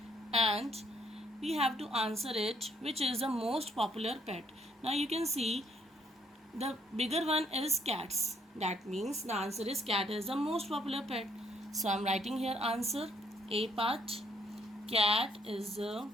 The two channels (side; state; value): both; normal; correlation 0.67